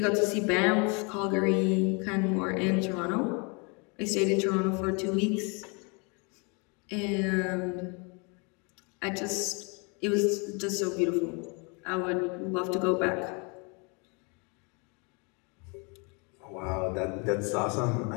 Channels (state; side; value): quieter; right; 32.5 dB